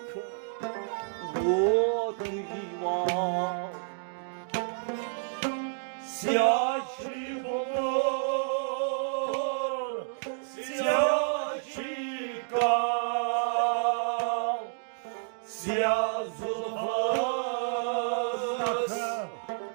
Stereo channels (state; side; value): silent; left; digital silence